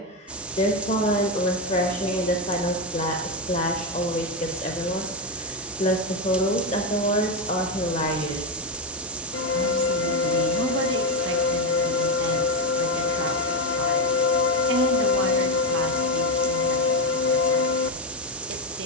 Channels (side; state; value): both; normal; correlation 0.09